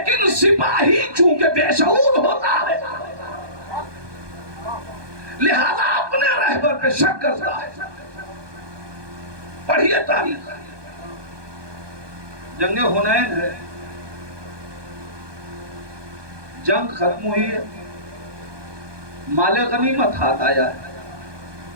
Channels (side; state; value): left; late; 1.2 ms